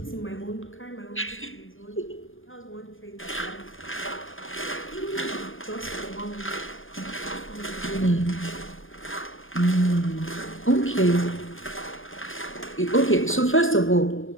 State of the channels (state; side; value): late; right; 0.59 ms